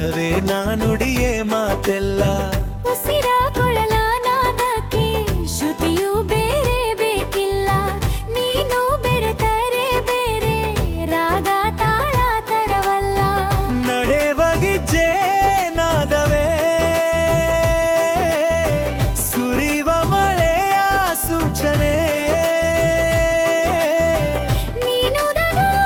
ನಾ ನುಡಿಯೇ ಮಾತೆಲ್ಲ. ಉಸಿರ ಕೊಳಲ ನಾದಕ್ಕೆ ಶ್ರುತಿಯು ಬೇರೆ ಬೇಕಿಲ್ಲ. ನೀನು ಬೆರೆತರೆ ಬೇರೆ ರಾಗ ತಾಳ ತರವಲ್ಲ. ನಡೆವಗಿಜ್ಜೆ ನಾದವೇ ಸುರಿವ ಮಳೆಯ ಸೂಚನೆ. ನೀನು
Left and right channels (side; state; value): both; identical; correlation 1.00